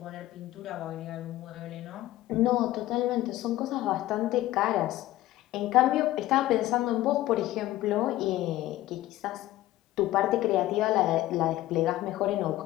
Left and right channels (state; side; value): quieter; right; 15.6 dB